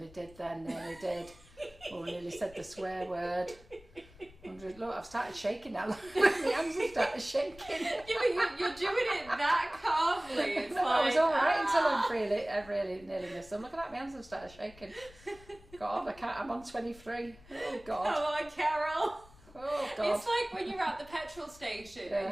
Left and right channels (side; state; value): left; noise; rumble, 23 dB below the sound